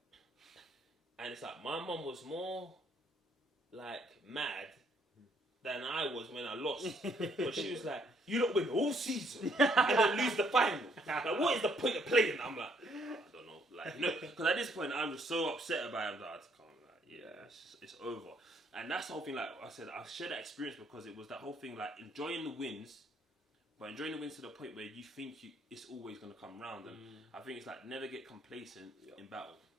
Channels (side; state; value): both; normal; correlation 0.68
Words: And it's like my mum was more like mad than I was when I lost. But she was like, "You lot win all season and then lose the final. Like, what is the point of playing?" I'm like, I don't know. Like, you know, because at this point I'm just so upset about it. I'm like, I can't, like, yeah, it's over. And that's the whole thing. Like I said, I shared that experience because it was that whole thing, like enjoying the wins, but enjoying the wins to the point where you think it's always going to come round. And I think it's like never get complacent in battle.